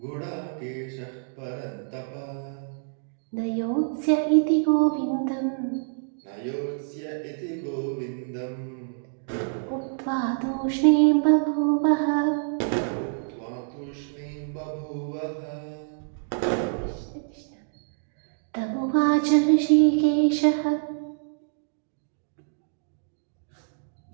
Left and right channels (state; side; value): silent; left; digital silence